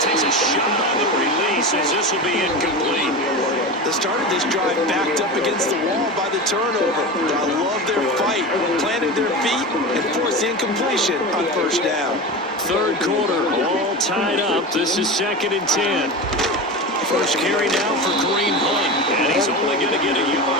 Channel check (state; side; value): normal; both; correlation 0.25